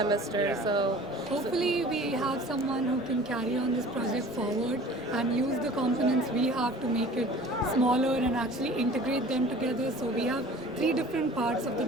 so hopefully we have someone who can carry on this project forward and use the components we have to make it smaller and actually integrate them together. So we have 3 different parts of the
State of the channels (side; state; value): both; normal; correlation 0.45